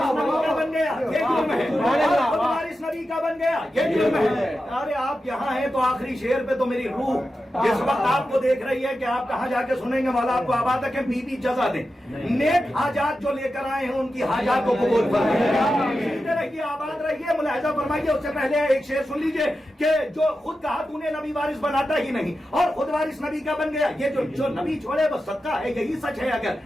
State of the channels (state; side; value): normal; both; correlation 0.91